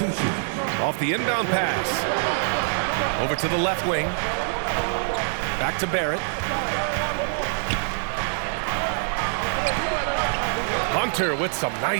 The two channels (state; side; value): silent; left; digital silence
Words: Off the inbound pass. Over to the left wing. Back to Barrett. Hunter with some